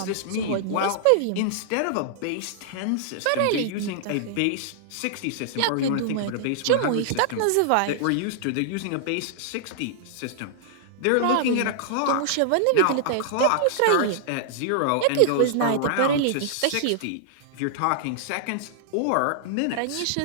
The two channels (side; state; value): both; different; correlation -0.01